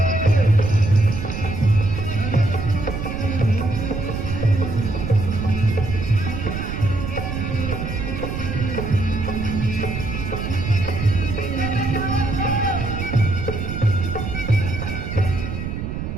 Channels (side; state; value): right; noise; rumble, 5 dB below the sound